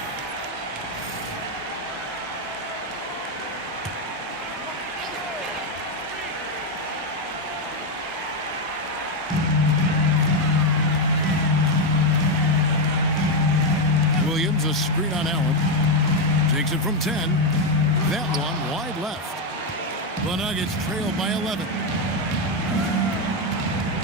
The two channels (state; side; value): normal; both; correlation 0.06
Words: Williams, a screen on Allen. Takes it from 10. That one wide left. The Nuggets trail by 11.